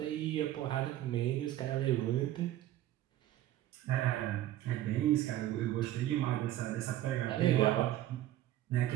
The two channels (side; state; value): left; quieter; 13.6 dB